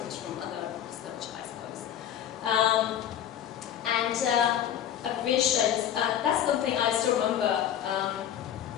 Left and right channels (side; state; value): right; quieter; 10.2 dB